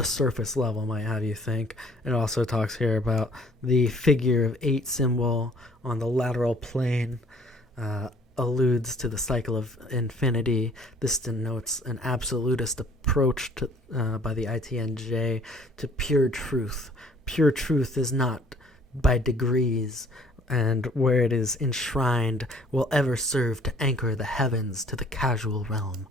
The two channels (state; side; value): normal; both; correlation 0.57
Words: surface level might have you think. It also talks here about the figure of 8 symbol on the lateral plane, alludes to the cycle of infinity. This denotes an absolutist approach to, by the ITNJ to pure truth. Pure truth is not by degrees, and where it is enshrined will ever serve to anchor the heavens to the casual realm.